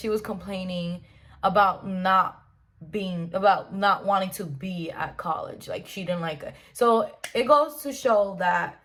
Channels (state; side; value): identical; both; correlation 1.00